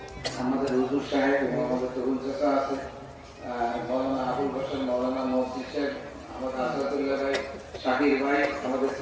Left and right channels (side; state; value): both; identical; correlation 1.00